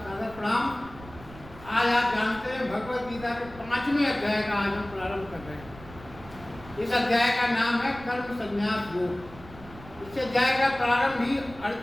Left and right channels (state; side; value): noise; right; rumble, 18 dB below the sound